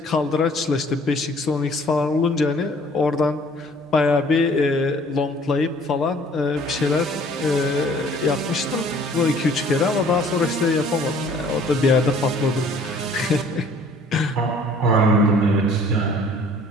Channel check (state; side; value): normal; both; correlation 0.55